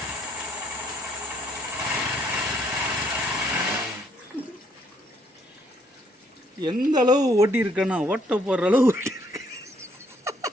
எந்த அளவு ஓட்டி இருக்கேன்னா ஓட்ட போடுற அளவு ஓட்டி இருக்கு.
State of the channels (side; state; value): both; normal; correlation 0.67